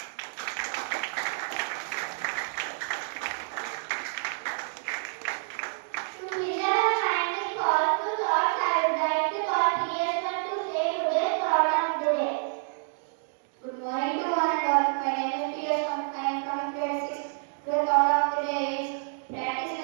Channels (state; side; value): silent; left; digital silence